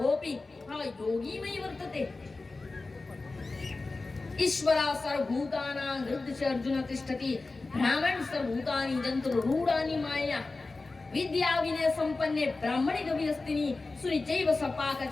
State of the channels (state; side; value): quieter; right; 3.5 dB